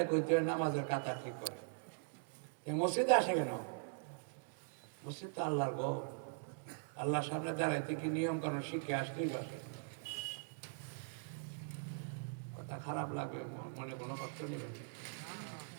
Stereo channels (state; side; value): silent; left; digital silence